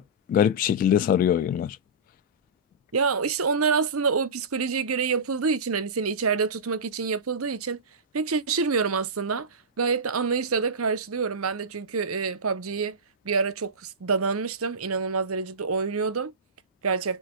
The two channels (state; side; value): normal; both; correlation -0.18